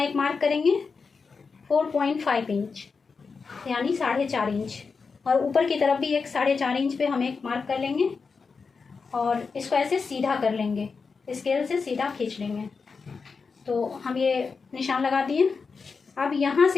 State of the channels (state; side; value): quieter; right; 5.0 dB